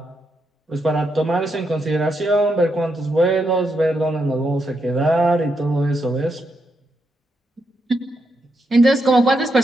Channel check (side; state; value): both; normal; correlation 0.81